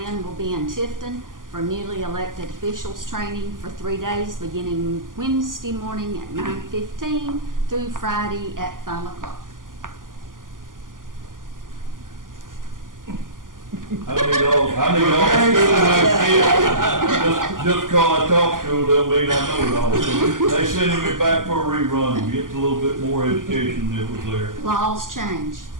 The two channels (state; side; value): late; left; 0.89 ms